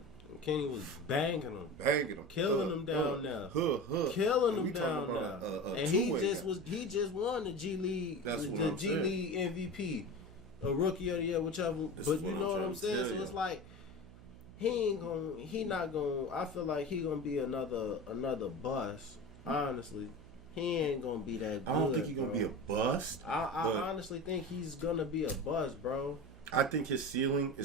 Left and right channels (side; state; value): right; noise; hum, 19 dB below the sound